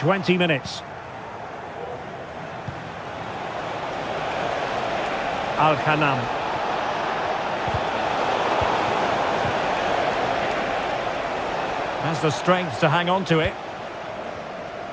minutes. Al-Ghanam. Has the strength to hang on to it.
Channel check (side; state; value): both; identical; correlation 1.00